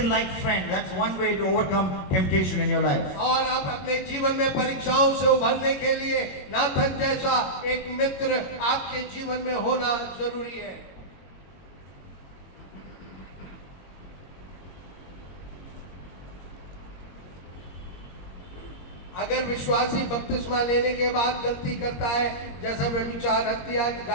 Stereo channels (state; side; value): late; right; 21 ms